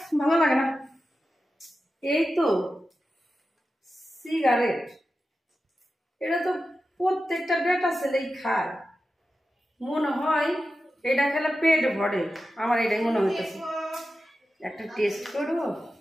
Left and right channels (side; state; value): both; normal; correlation 0.92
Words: ভালো লাগে না। এই তো সিগারেট, এটা তো প্রত্যেকটা বেটা ছেলেই খায়। মনে হয় এটা খেলে পেট ভরে, আমার এটাই মনে হইতেছে। একটা টেস্ট করবো,